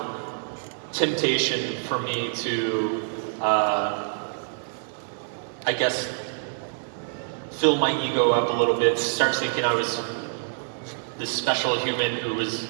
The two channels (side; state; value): left; silent; digital silence